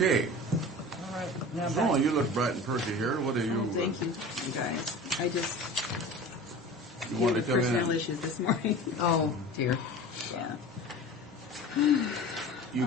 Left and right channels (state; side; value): normal; both; correlation 0.37